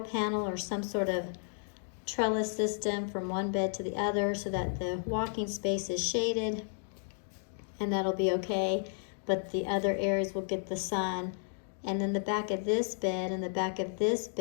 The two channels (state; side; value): silent; right; digital silence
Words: panel or some sort of trellis system from one bed to the other so that the walking space is shaded, and that'll be okay, but the other areas will get the sun. And then the back of this bed and the back of this